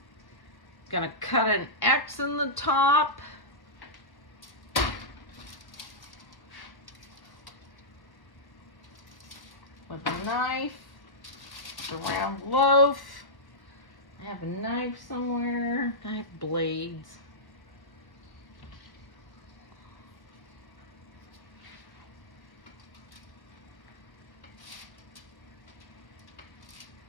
Gonna cut an X in the top. With a knife. It's a round loaf. I have a knife somewhere. I have blades.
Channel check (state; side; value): late; right; 1.1 ms